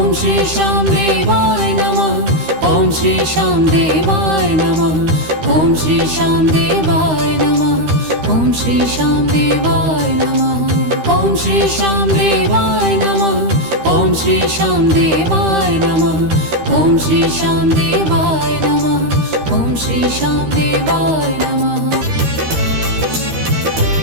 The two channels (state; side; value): late; left; 13 ms